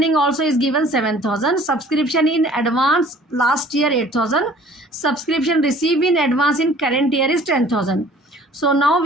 also is given 7,000. Subscription in advance last year 8,000. Subscription received in advance in current year is 10,000. So now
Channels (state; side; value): normal; both; correlation 0.51